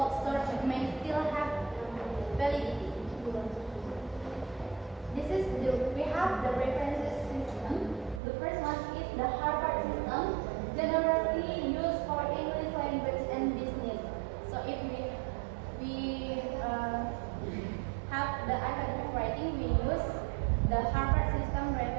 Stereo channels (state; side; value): drops out; left; at 8.2 s